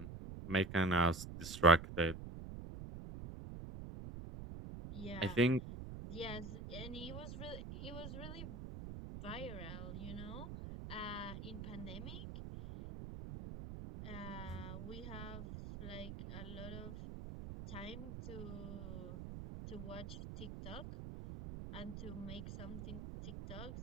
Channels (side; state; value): right; noise; rumble, 8 dB below the sound